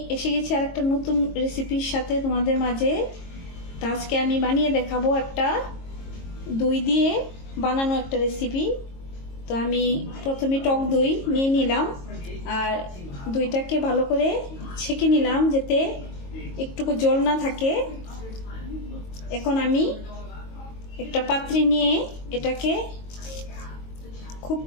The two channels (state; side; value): late; right; 22 ms